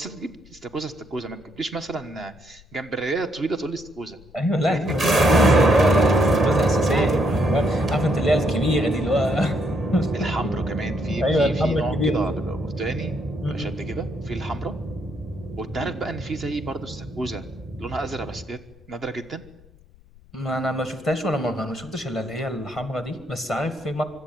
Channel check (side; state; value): left; noise; rumble, 26 dB below the sound